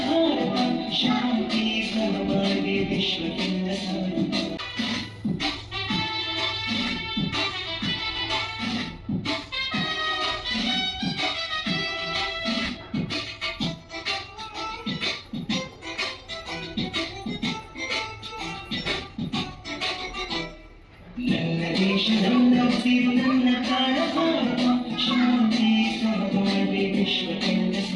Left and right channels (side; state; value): both; identical; correlation 1.00